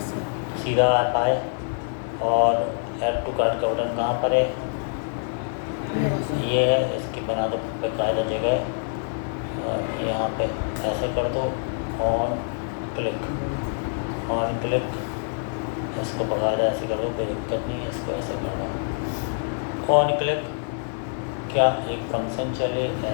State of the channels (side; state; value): right; silent; digital silence